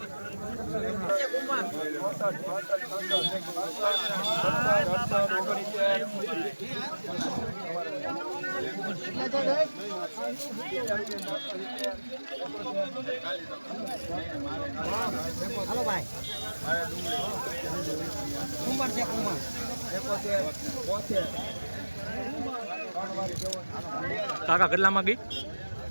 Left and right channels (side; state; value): both; inverted; correlation -1.00